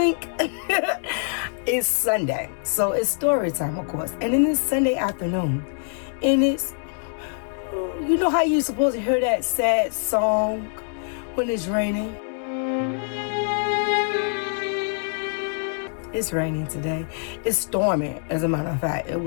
It's Sunday, so it's story time, of course. And then it's Sunday afternoon, and it's, you know how you're supposed to hear that sad song when it's raining? It's raining today. It's storming, as a matter of fact. It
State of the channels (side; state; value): right; silent; 62 dB below the other